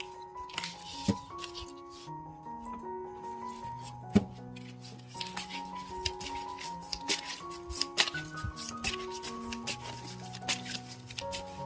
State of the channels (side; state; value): both; identical; correlation 1.00